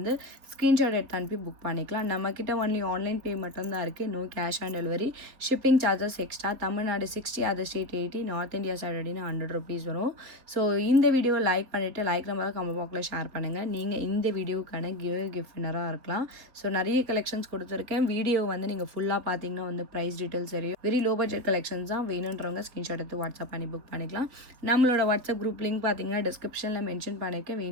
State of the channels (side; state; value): left; late; 3.9 ms